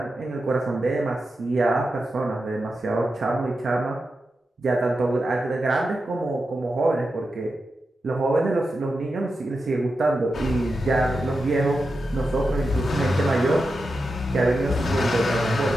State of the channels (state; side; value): normal; both; correlation 0.89